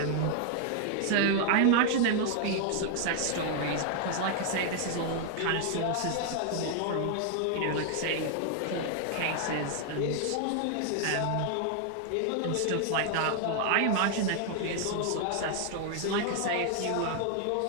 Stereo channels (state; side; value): different; both; correlation 0.00